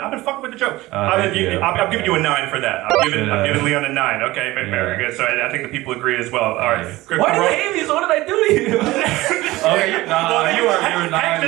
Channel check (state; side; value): quieter; left; 18.7 dB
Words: been fucking with the joke. Thank you. I'm giving you a 9 for that. I'm giving Leon a 9. Okay, very Yeah. good. So I think the people agree as well. All right. Why do you hate me? So what did I do to you? Okay, you were Hank 9.